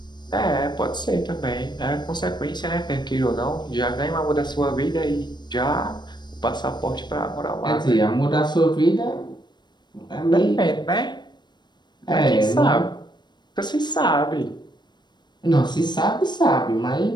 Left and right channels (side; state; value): right; late; 0.21 ms